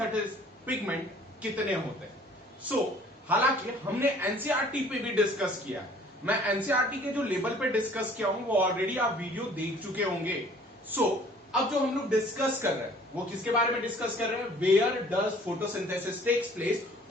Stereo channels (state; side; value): normal; both; correlation 0.54